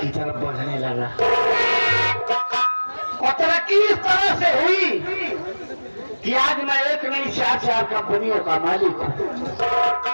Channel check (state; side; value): inverted; both; correlation -1.00